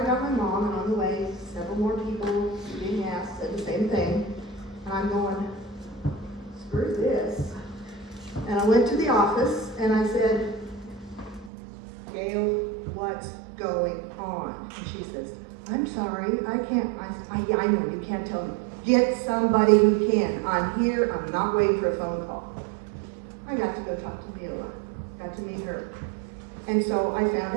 got my mom, and on the way, several more people being asked said the same thing. And I'm going, screw this. And I went to the office and I said, Gail, what's going on? And she says, I'm sorry, I can't, I know, you can't tell me. Get somebody who can. I'm here, I'm not waiting for a phone call. I got to go talk to Viola, got to meet her. And so I found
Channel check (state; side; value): drops out; left; at 11.5 s